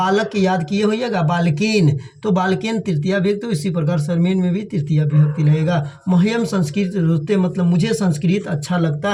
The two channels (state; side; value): identical; both; correlation 1.00